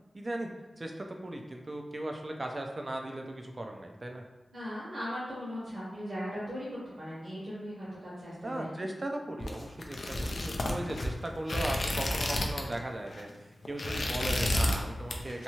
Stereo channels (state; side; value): normal; both; correlation 0.94